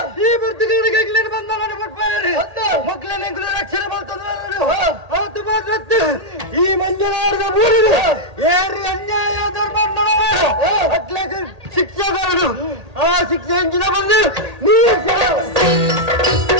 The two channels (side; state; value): left; late; 1.8 ms